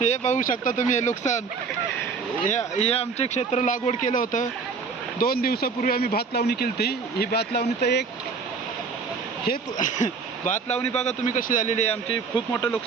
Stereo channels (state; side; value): quieter; left; 5.1 dB